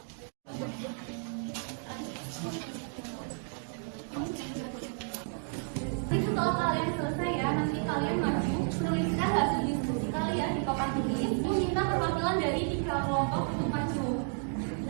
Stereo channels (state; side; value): silent; left; 56 dB below the other